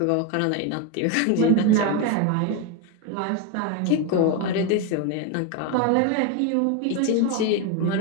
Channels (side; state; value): both; different; correlation 0.02